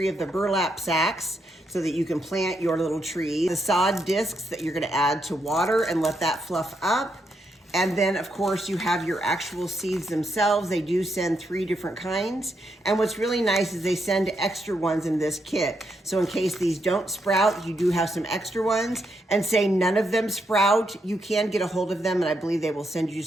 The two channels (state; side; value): normal; both; correlation 0.80